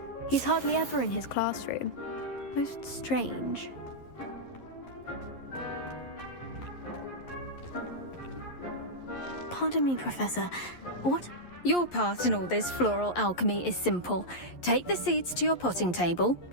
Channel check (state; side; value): late; right; 11 ms